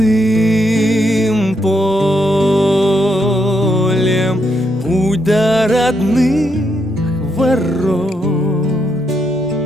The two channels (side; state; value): both; normal; correlation 0.78